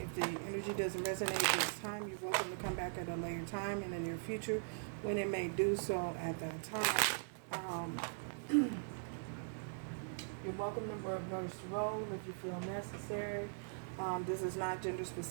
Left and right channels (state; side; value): silent; left; digital silence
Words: the energy doesn't resonate this time, you're welcome to come back at a later time in the near future when it may do so at that time. You're welcome to reverse role if you feel necessary. This is not gender